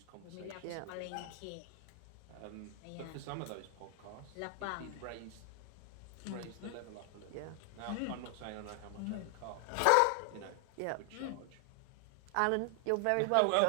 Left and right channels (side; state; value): both; different; correlation 0.00